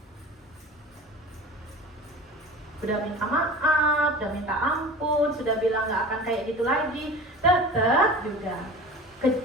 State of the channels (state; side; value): normal; both; correlation 0.37